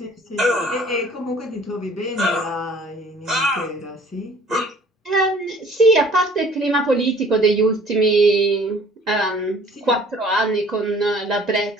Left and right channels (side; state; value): both; normal; correlation 0.53